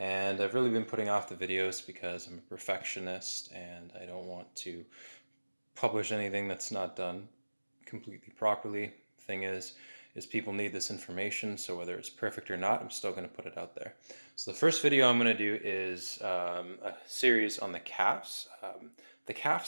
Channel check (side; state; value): both; inverted; correlation -1.00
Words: I've really been putting off the videos because I'm a perfectionist and I don't want to publish anything that's not done completely properly. Thing is people need this information, so whether it's perfect or not, I'm still going to put it out there. So the first video I'm going to do is a series on the calves. The